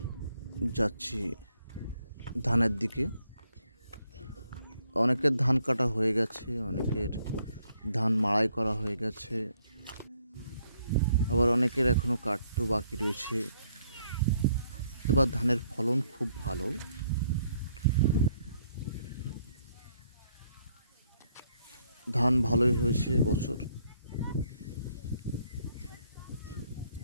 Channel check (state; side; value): inverted; both; correlation -0.70